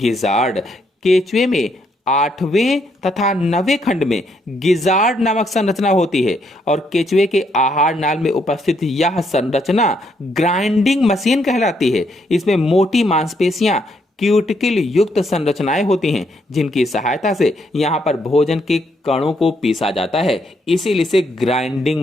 केचुए में 8वें तथा 9वें खंड में गिजार्ड नामक संरचना होती है और केचुए के आहार नाल में उपस्थित यह संरचना ग्राइंडिंग मशीन कहलाती है। इसमें मोटी मांसपेशियां क्यूटिकल युक्त संरचनाएं होती हैं जिनकी सहायता से यहां पर भोजन के कणों को पीसा जाता है, इसीलिए इसे ग्राइंडिंग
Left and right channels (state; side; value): normal; both; correlation 0.74